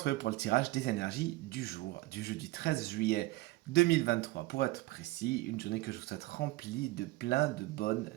pour le tirage des énergies du jour, du jeudi 13 juillet 2023. Pour être précis, une journée que je vous souhaite remplie de plein de bonnes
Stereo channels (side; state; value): left; quieter; 19.2 dB